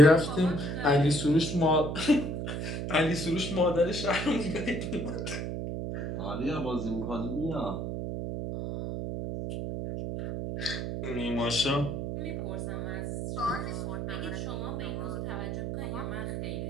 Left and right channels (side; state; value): right; noise; hum, 3 dB below the sound